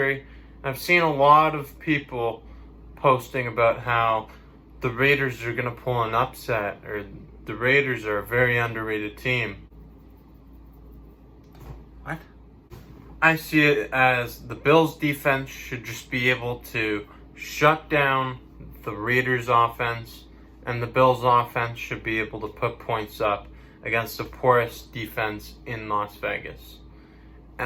I've seen a lot of people posting about how the Raiders are going to pull an upset, or the Raiders are a very underrated team. What? I see it as the Bills defense should just be able to shut down the Raiders offense, and the Bills offense should be able to put points up against the poorest defense in Las Vegas.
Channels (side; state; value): both; identical; correlation 1.00